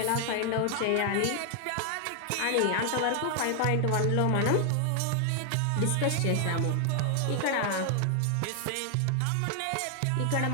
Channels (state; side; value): different; both; correlation 0.00